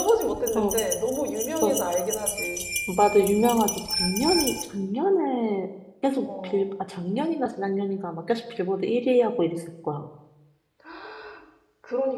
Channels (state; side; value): identical; both; correlation 1.00